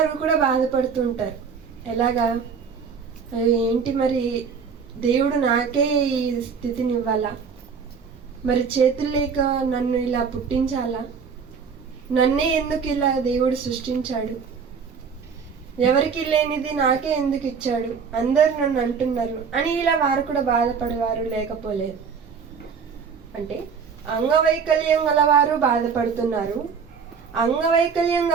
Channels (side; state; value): left; quieter; 6.1 dB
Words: కూడా బాధపడుతూ ఉంటారు. ఎలాగా? ఏంటి మరి దేవుడు నాకే ఈ స్థితిని ఇవ్వాలా, మరి చేతులు లేక నన్ను ఇలా పుట్టించాలా, నన్నే ఎందుకు ఇలా దేవుడు సృష్టించాడు, ఎవరికి లేనిది నాకే ఎందుకు ఇచ్చాడు, అందరు నన్ను అంటున్నారు అని ఇలా వారు కూడా బాధపడేవారు లేకపోలేదు. అంటే అంగవైకల్యం గలవారు బాధపడుతున్నారు, అంగవైకల్యం